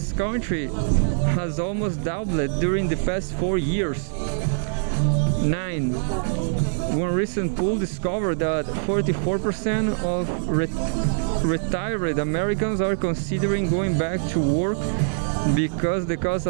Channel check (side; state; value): left; silent; 63 dB below the other